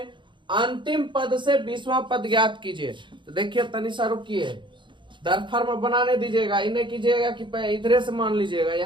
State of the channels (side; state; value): left; late; 0.23 ms